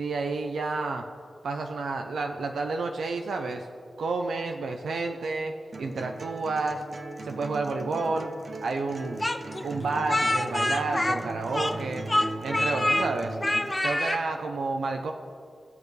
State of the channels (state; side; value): normal; both; correlation 0.91